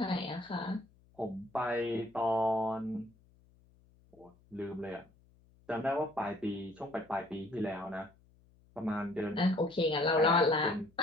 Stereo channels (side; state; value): left; noise; hum, 30 dB below the sound